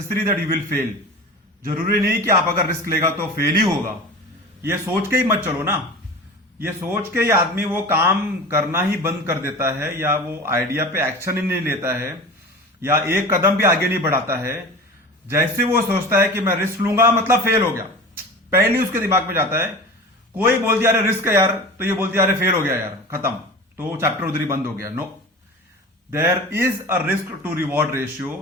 that you will fail. जरूरी नहीं कि आप अगर risk लेगा तो फेल ही होगा। ये सोच के ही मत चलो ना। ये सोच के ही आदमी वो काम करना ही बंद कर देता है, या वो आइडिया पे एक्शन ही नहीं लेता है, या एक कदम भी आगे नहीं बढ़ाता है। जैसे वो सोचता है कि मैं रिस्क लूंगा मतलब फेल हो गया, पहले ही उसके दिमाग में जाता है। कोई बोल दिया अरे रिस्क है यार, तो ये बोलती है अरे फेल हो गया यार, खत्म, तो चैप्टर उधर ही बंद हो गया। No, there is a risk to reward ratio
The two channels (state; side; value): normal; both; correlation 0.34